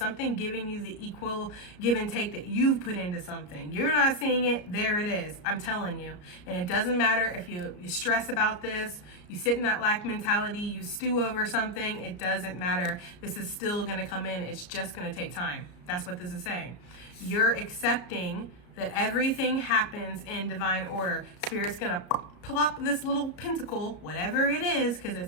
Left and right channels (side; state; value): right; late; 33 ms